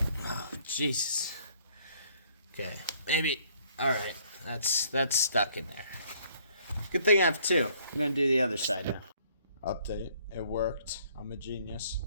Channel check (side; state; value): both; inverted; correlation -0.62